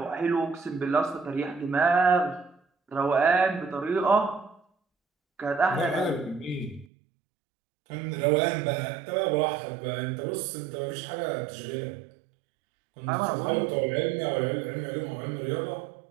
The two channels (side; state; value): left; drops out; at 6.9 s